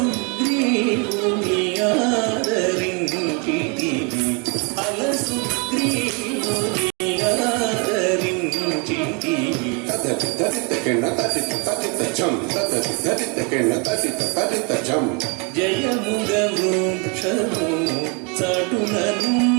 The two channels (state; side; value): quieter; left; 33.3 dB